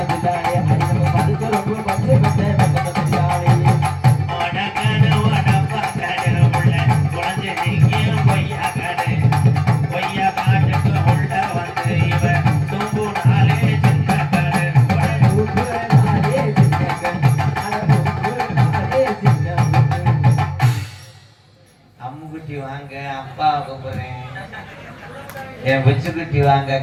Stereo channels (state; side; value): identical; both; correlation 1.00